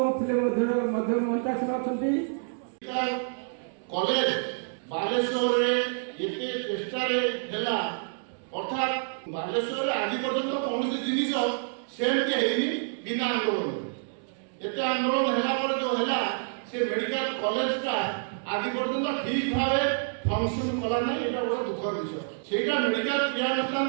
मध्यम मंत्रासन अच्छा कॉलेज बालेश्वर एते चेष्टार है अर्थात बालेश्वर आज पर्यंत कौन जिन सेमती है बिना आंदोलन एत आंदोलन है जो है से मेडिकल कॉलेज का आज पर्यंत ठीक भाव फंक्शन कला ना ये बड़ा दुखर विषय से मेडिकल क्रियानुष्ठान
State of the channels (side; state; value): left; silent; digital silence